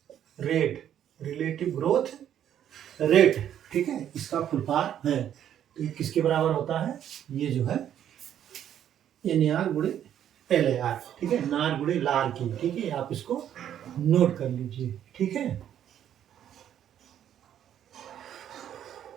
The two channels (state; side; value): quieter; left; 10.2 dB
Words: rate. Relative growth rate, ठीक है, इसका फुल फॉर्म है। तो ये किसके बराबर होता है, ये जो है NAR गुणे LAR। ठीक है, नार गुणे लार की। ठीक है, आप इसको नोट कर लीजिए। ठीक है,